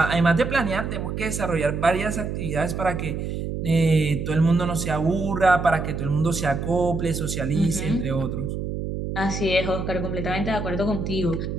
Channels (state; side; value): noise; right; hum, 4 dB below the sound